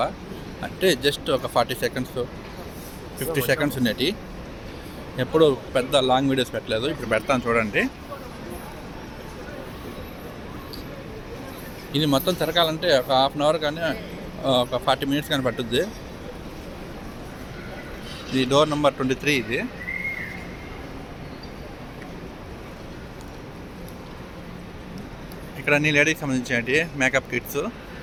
అంటే జస్ట్ ఒక 40 సెకండ్స్ 50 సెకండ్స్ ఉండేటి. ఎప్పుడు పెద్ద లాంగ్ వీడియోస్ పెట్టలేదు. ఇప్పుడు పెడతాను చూడండి. ఇది మొత్తం తిరగాలంటే ఒక హాఫ్ అన్ అవర్ కానీ ఒక 40 మినిట్స్ కానీ పట్టుద్ది. ఇది డోర్ నెంబర్ 23. ఇది ఇక్కడ అన్ని లేడీకి సంబంధించినవి మేకప్ కిట్స్.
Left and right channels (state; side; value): identical; both; correlation 1.00